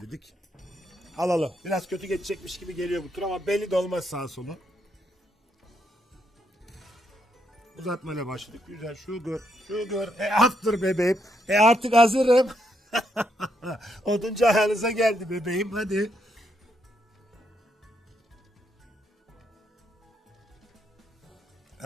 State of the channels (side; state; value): both; normal; correlation 0.77